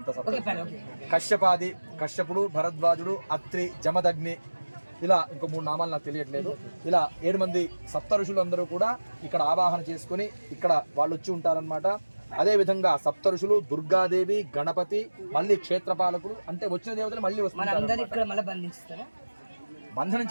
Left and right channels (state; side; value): inverted; both; correlation -1.00